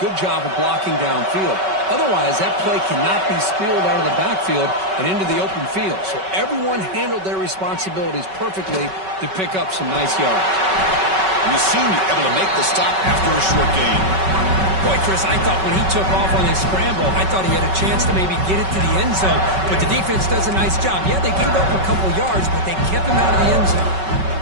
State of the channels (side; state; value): left; late; 5.3 ms